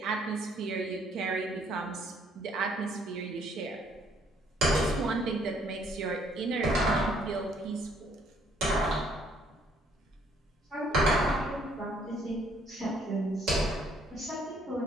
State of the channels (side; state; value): both; normal; correlation 0.65